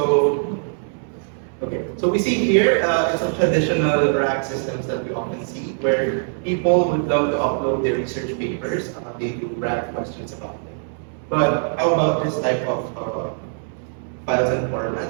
we see here it's a traditional rack systems that we often see where people would love to upload their research papers. They do rack questions about them. But how about this type of files and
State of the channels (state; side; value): silent; left; 64 dB below the other